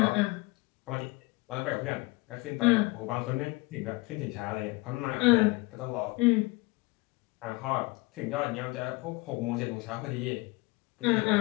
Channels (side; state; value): right; quieter; 24.1 dB